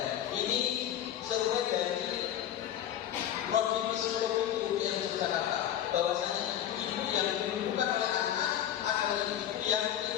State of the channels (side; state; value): right; quieter; 10.9 dB